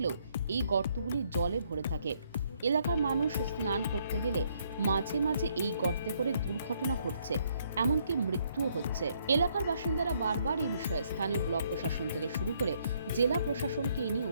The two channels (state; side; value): inverted; both; correlation -0.70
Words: এই গর্তগুলি জলে ভরে থাকে। এলাকার মানুষ স্নান করতে গেলে মাঝে মাঝে এই গর্তে পড়ে দুর্ঘটনা ঘটছে, এমনকি মৃত্যুও হচ্ছে। এলাকার বাসিন্দারা বারবার এই বিষয়ে স্থানীয় ব্লক প্রশাসন থেকে শুরু করে জেলা প্রশাসনকে এ নিয়ে